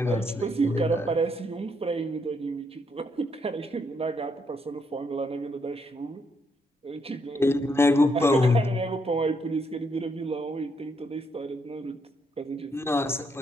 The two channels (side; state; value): both; normal; correlation 0.76